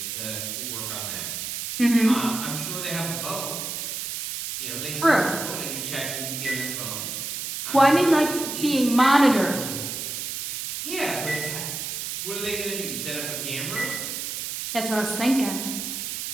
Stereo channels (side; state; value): right; noise; hiss, 5 dB below the sound